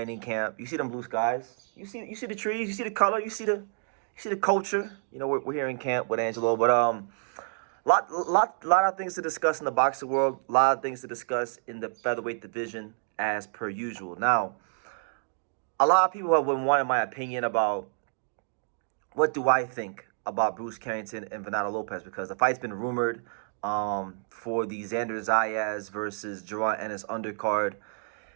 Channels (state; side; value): silent; left; 59 dB below the other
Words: camp. You see them blue skies? You see the trees? You see the color? You see the culture? You know, we're here in camp with Angelo, but lot of things to discuss in the boxing world. A lot of things to discuss in the featherweight division, as per usual. Now, a lot of people have been wanting my opinion about what do I think about Bruce Carrington and Venado Lopez, because the fight's been rumored for the Xander Zayas versus Jerron Ennis undercard.